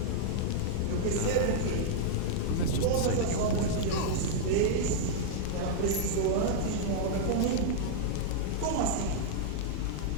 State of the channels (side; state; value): both; different; correlation -0.01